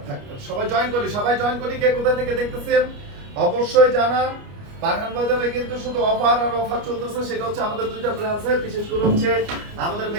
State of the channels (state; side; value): late; left; 29 ms